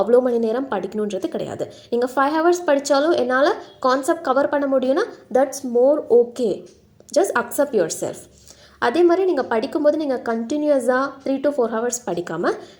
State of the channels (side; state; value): both; identical; correlation 1.00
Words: அவ்வளோ மணி நேரம் படிக்கணுன்றது கிடையாது. நீங்கள் 5 hours படித்தாலும் என்னால் கான்செப்ட் கவர் பண்ண முடியும்னா that's more okay. Just accept your self. அதே மாதிரி நீங்கள் படிக்கும்போது நீங்கள் கண்டினியூஸாக 3 to 4 hours படிக்காமல்